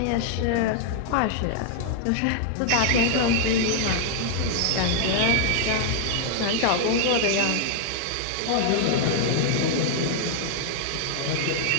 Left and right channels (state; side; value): different; both; correlation 0.00